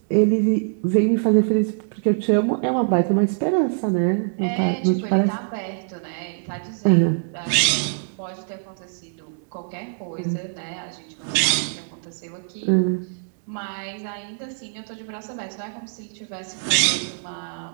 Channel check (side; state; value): left; silent; 63 dB below the other